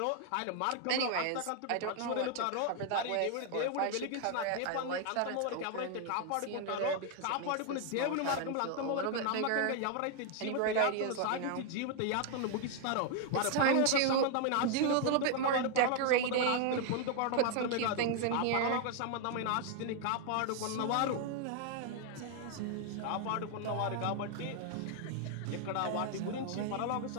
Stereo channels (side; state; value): both; different; correlation 0.00